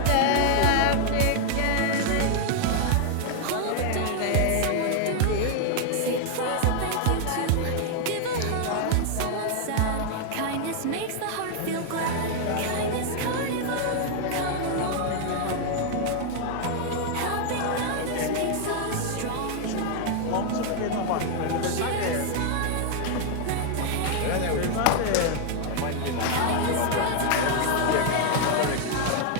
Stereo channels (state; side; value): different; both; correlation 0.00